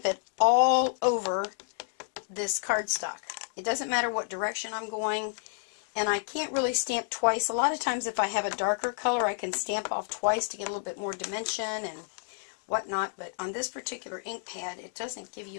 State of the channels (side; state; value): right; silent; 58 dB below the other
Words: it all over this cardstock. It doesn't matter what direction I'm going, and I can't really stamp twice. A lot of times if I have a darker color, I can stamp off twice to get a little bit more dimension and whatnot, but on this particular ink pad, it doesn't give